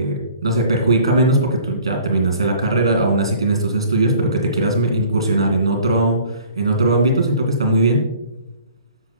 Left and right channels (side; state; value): both; inverted; correlation -0.51